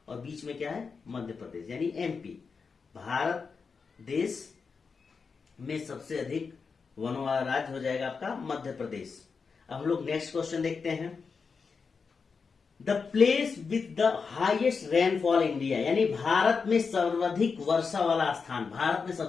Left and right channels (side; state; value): right; quieter; 5.2 dB